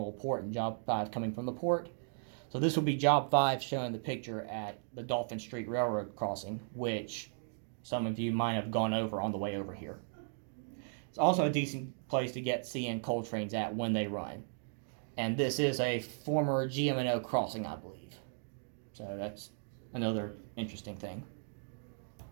port and Job 5 coming from the port. So this will be Job 5 showing the picture at the Dolphin Street Railroad crossing, which some of you might have gone over on the way over here. It's also a decent place to get CN coal trains at when they run. And this is a former GM&O crossing, I believe. So that's another interesting thing.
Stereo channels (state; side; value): silent; left; digital silence